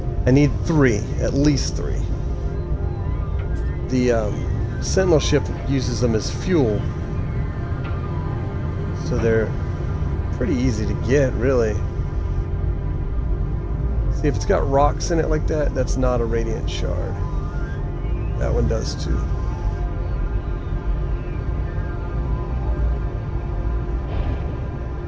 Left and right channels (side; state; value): both; identical; correlation 1.00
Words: I need 3, at least 3. The Sentinel ship uses them as fuel, so they're pretty easy to get, really. See, if it's got rocks in it like that, that's not a radiant shard. That one does too.